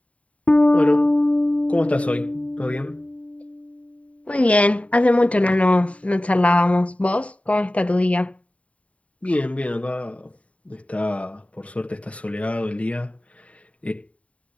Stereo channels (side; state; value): right; late; 0.066 ms